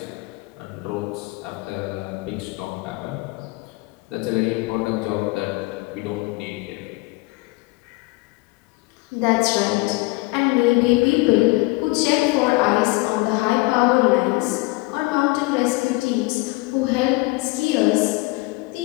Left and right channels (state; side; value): quieter; right; 23.9 dB